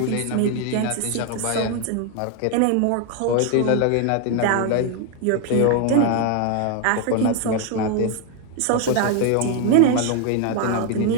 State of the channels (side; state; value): both; different; correlation 0.01